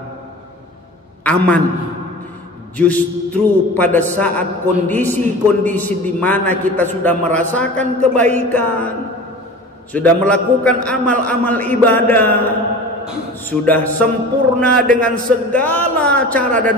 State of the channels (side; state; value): both; normal; correlation 0.37